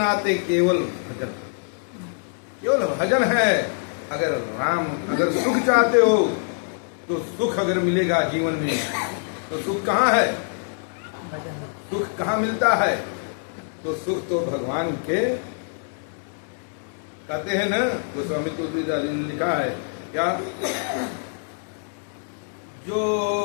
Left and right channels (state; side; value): silent; right; 62 dB below the other